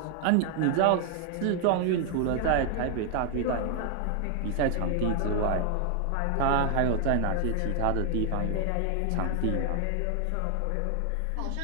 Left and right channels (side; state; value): both; different; correlation 0.00